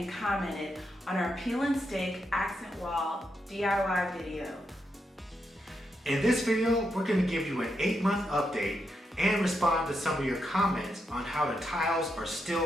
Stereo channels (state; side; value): normal; both; correlation 0.83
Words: commented on our peel and stake accent wall DIY video. In this video, we're going to give you an 8-month update and respond to some of your comments on how the tiles are